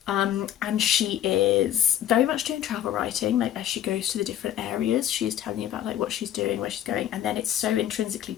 And she is very much doing travel writing, like as she goes to the different areas, she's telling you about like what she's doing, where she's going, and then it's so intrinsically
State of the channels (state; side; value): quieter; right; 11.2 dB